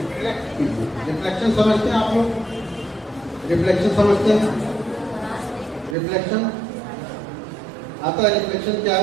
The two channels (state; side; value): drops out; left; at 6.0 s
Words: कीजिए। रिफ्लेक्शन समझते हैं आप लोग? रिफ्लेक्शन समझते हैं? रिफ्लेक्शन आता है? रिफ्लेक्शन क्या है?